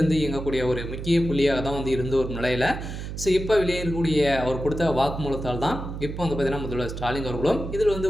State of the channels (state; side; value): noise; right; hum, 7 dB below the sound